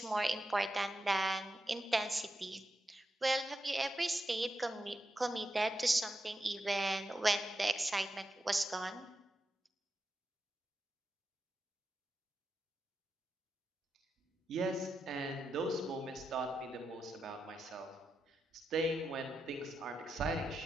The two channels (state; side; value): normal; both; correlation 0.88